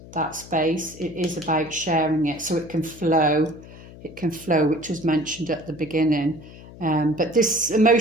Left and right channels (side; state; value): left; noise; hum, 18 dB below the sound